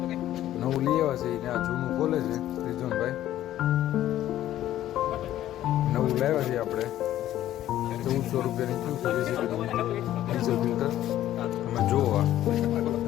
નવું લઈ આવ્યા છે. એને આ જૂનું ખોલે છે રિઝવાનભાઈ. નવું લાવ્યા છે આપણે, 1400 રૂપિયાની થયું છે જેસીબીનું ડીઝલ ફિલ્ટર. અમે જોવા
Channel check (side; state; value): right; quieter; 13.0 dB